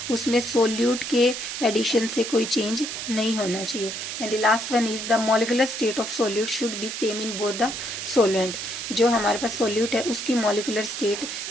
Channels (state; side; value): noise; right; hiss, 6 dB below the sound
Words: उसमें सोल्यूट के एडिशन से कोई चेंज नहीं होना चाहिए। And the last one is the molecular state of solute should be same in both the solvent. जो हमारे पास सोल्यूट है उसकी मॉलिक्यूलर स्टेट